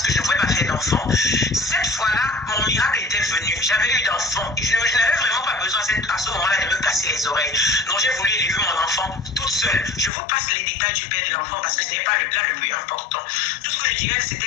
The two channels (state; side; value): drops out; right; at 10.1 s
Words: que je ne pouvais pas faire d'enfant, cette fois-là, mon miracle était venu. J'avais eu d'enfant et je n'avais vraiment pas besoin à ce moment-là de me casser les oreilles. Donc j'ai voulu élever mon enfant toute seule. Je vous passe les détails du père de l'enfant parce que ce n'est pas là le plus important. Tout ce que je dirais,